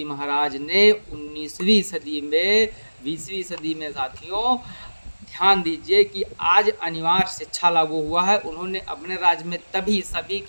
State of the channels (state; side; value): inverted; both; correlation -1.00